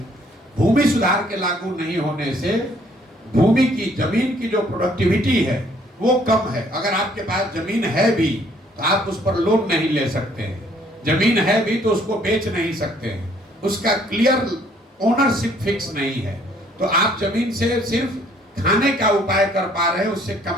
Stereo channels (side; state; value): both; normal; correlation 0.62